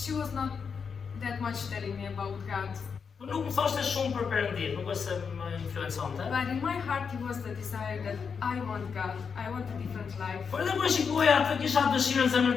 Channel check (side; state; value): right; quieter; 6.1 dB